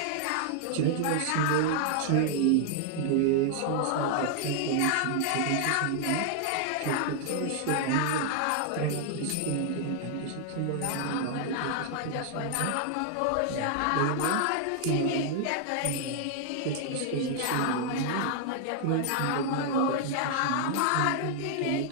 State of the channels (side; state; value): both; different; correlation 0.00